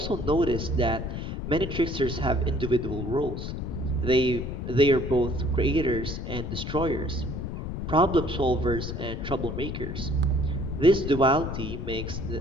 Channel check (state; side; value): noise; left; rumble, 5 dB below the sound